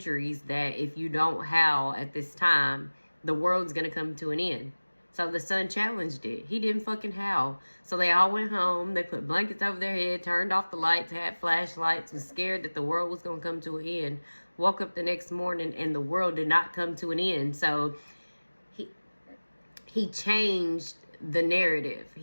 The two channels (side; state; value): both; inverted; correlation -1.00